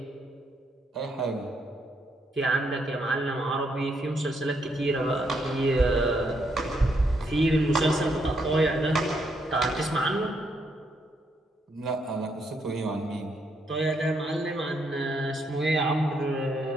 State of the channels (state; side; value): normal; both; correlation 0.76